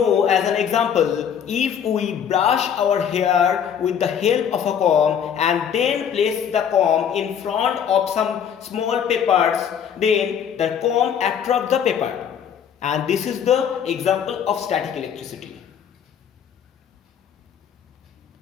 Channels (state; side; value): quieter; right; 8.3 dB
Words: as an example, if we brush our hair with the help of a comb and then place the comb in front of some small papers, then the comb attracts the paper. And this is the example of static electricity.